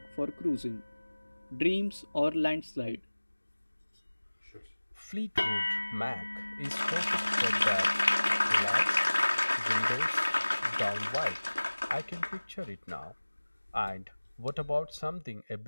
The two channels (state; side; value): inverted; both; correlation -1.00